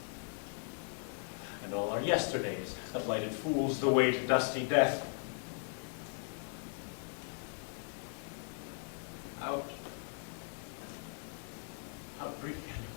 And all our yesterdays have lighted fools the way to dusty death. Out. Out brief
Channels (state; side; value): silent; right; 52 dB below the other